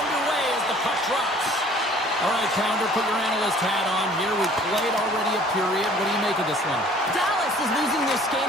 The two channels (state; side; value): normal; both; correlation 0.53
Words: as the puck drops. All right, Pounder, put your analyst hat on here. We played already a period. What do you make of this one? Dallas is losing this game